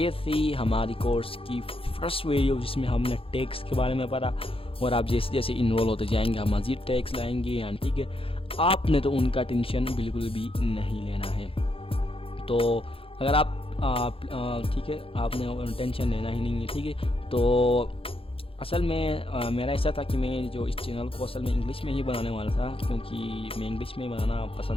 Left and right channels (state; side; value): late; right; 0.27 ms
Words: थी हमारी कोर्स की फर्स्ट वीडियो जिसमें हमने टैग्स के बारे में पढ़ा और आप जैसे जैसे इनरोल होते जाएंगे आप मज़ीद टैग्स लाएंगे यानी ठीक है। आपने तो उनका टेंशन बिल्कुल भी नहीं लेना है। तो अगर आप ठीक है आपने टेंशन लेना ही नहीं है ठीक है। तो असल में मेरा ऐसा था कि मैं जो इस चैनल को असल में इंग्लिश में ही बनाने वाला था क्योंकि मैं इंग्लिश में बनाना